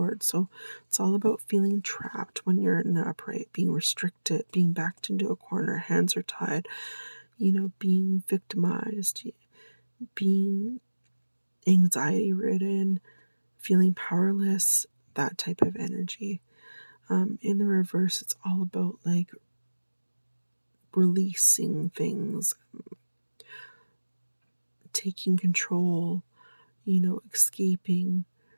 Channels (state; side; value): inverted; both; correlation -1.00